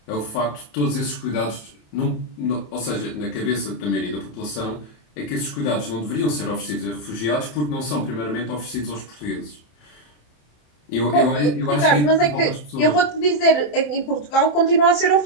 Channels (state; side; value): late; right; 27 ms